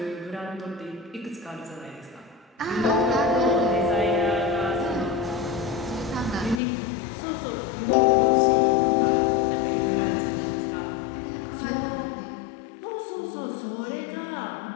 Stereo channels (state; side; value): drops out; right; at 6.6 s